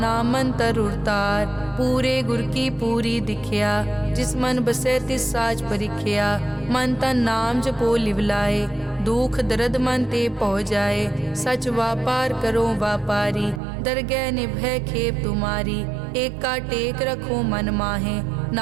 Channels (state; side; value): drops out; left; at 13.6 s